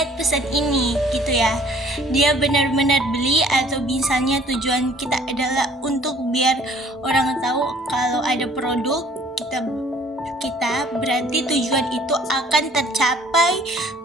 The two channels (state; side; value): normal; both; correlation 0.56